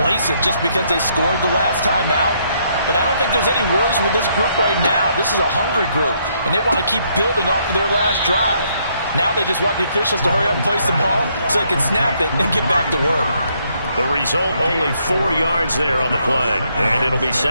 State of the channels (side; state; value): both; inverted; correlation -0.72